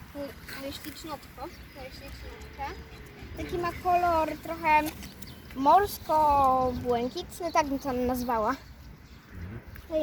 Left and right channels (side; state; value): both; identical; correlation 1.00